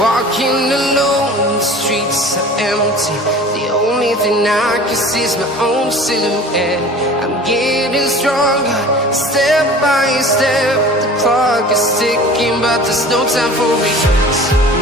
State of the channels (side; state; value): both; normal; correlation 0.42